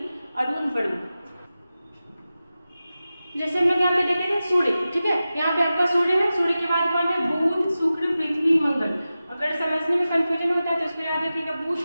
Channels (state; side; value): inverted; both; correlation -0.94